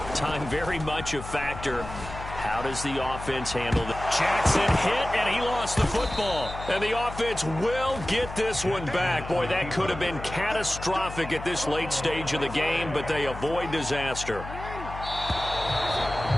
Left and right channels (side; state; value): left; noise; hum, 11 dB below the sound